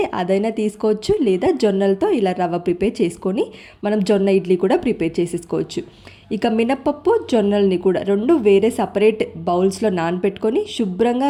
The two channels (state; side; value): identical; both; correlation 1.00